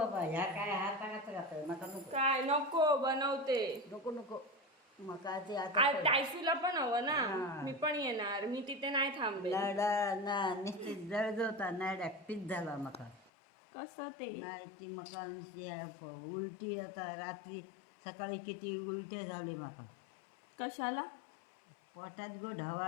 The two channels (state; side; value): drops out; right; at 13.3 s